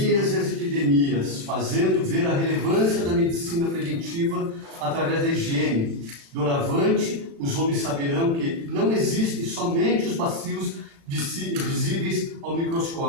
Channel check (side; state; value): left; late; 36 ms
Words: e as epidemias, fazendo ver a relevância da medicina preventiva através da higiene. Doravante, os homens saberão que não existem somente os bacilos visíveis ao